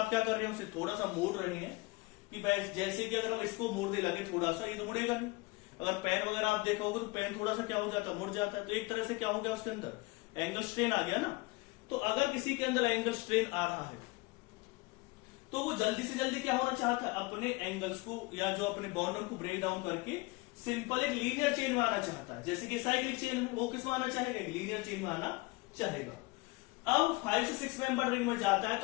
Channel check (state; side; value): quieter; right; 24.6 dB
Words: क्या कर रहे हैं उसे थोड़ा सा मोड़ रहे हैं कि जैसे कि अगर हम इसको मोड़ दे लगे थोड़ा सा, ये तो मुड़ेगा नहीं। अगर पेन वगैरह आप देखा होगा तो पेन थोड़ा सा क्या हो जाता है मुड़ जाता है, तो एक तरह से क्या हो गया उसके अंदर एंगल स्ट्रेन आ गया ना। तो अगर किसी के अंदर एंगल स्ट्रेन आ रहा है तो वो जल्दी से जल्दी क्या होना चाहता है, अपने एंगल्स को या जो अपने बॉन्डर को ब्रेक डाउन करके सिंपल एक लीनियर चेन में आना चाहता है, जैसे कि साइक्लिक चेन में वो किस में आना चाहेगा, एक लीनियर चेन में आना चाहेगा। अब 5 से 6 मेंबर रिंग में जाता है